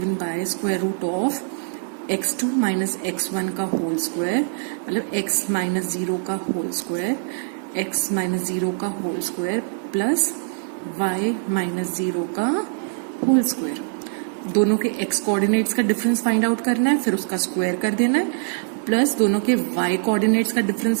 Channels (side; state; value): left; silent; digital silence